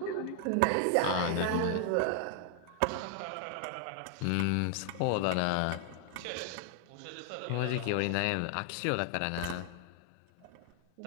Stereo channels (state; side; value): different; both; correlation 0.00